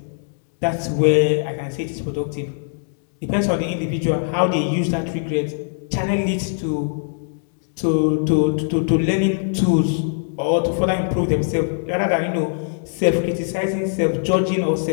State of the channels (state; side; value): silent; right; digital silence